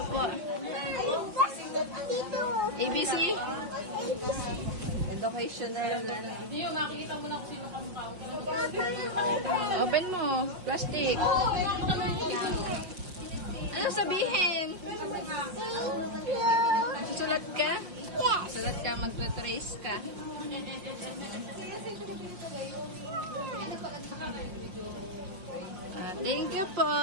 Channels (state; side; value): late; left; 5.6 ms